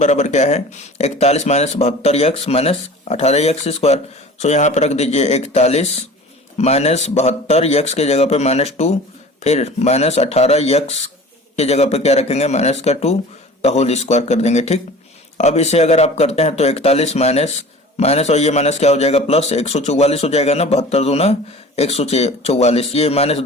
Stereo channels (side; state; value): both; normal; correlation 0.41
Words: क्या है 41 minus 72 x minus 18 x square. So यहाँ पे रख दीजिए 41 माइनस 72 एक्स के जगह पे -2, फिर माइनस 18 एक्स के जगह पे क्या रखेंगे माइनस का 2 का होल स्क्वायर कर देंगे, ठीक। अब इसे अगर आप करते हैं तो 41 माइनस और ये माइनस क्या हो जाएगा प्लस 144 हो जाएगा ना, 72 दूना 144, ये